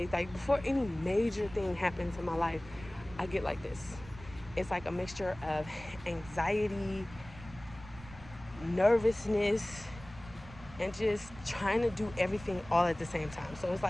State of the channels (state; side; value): noise; right; rumble, 17 dB below the sound